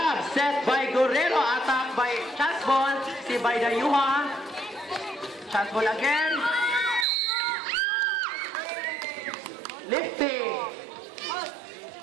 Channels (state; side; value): drops out; left; at 7.1 s